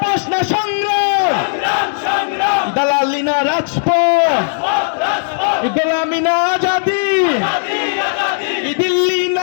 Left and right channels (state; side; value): silent; right; 67 dB below the other